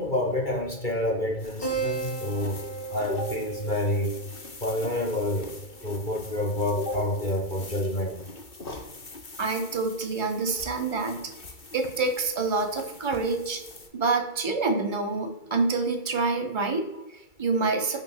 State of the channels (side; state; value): right; late; 2.3 ms